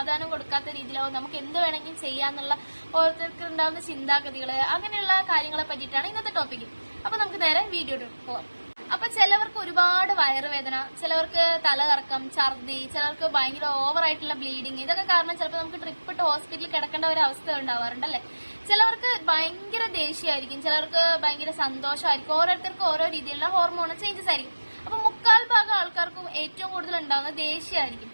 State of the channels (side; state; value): both; inverted; correlation -1.00